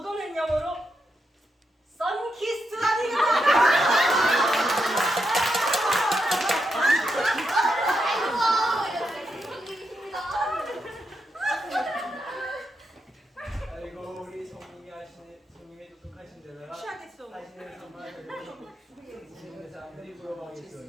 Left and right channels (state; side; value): normal; both; correlation 0.83